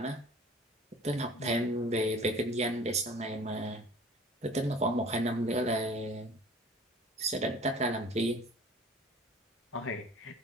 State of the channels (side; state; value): both; normal; correlation 0.46